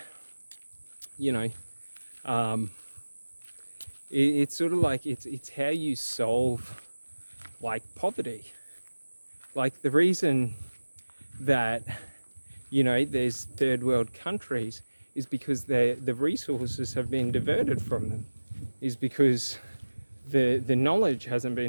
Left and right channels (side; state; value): both; inverted; correlation -1.00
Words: you know, it's sort of like it's how you solve like poverty. Like the reason that, you know, there's third world countries is because the resources have been diverted from them, is because the knowledge hasn't